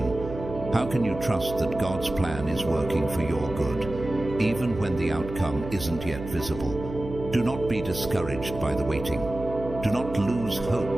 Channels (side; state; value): right; noise; hum, 10 dB below the sound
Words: How can you trust that God's plan is working for your good, even when the outcome isn't yet visible? Do not be discouraged by the waiting. Do not lose